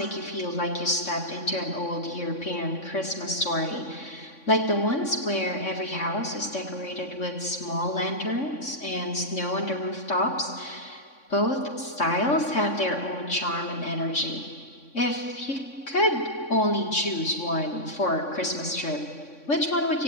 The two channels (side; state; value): right; late; 3.6 ms